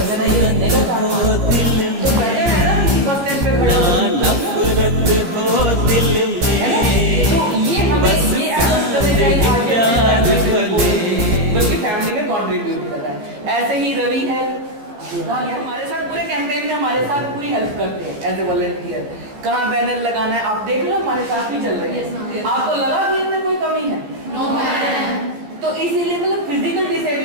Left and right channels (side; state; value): left; late; 14 ms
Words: ही रहने का कारोबार तो बेटर है ना किसी बस स्टैंड पे खड़े हो नफरत हो दिल में। तो ये हमें ये एडजस्ट करने चाहिए आगे बल्कि फैमिली में कंट्रीब्यूट कर रहा है। ऐसे ही रवि है, ये हमारे साथ पूरे कैंपेन में हमारे साथ पूरी हेल्प करते हैं एज ए वॉलंटियर। कहाँ बैनर लगाना है आप देख लो, हमारे साथ ही चल रहे हैं। आपको लगा कि इनमें कोई कमी है? No ma'am. तो इसीलिए मतलब फिजिकल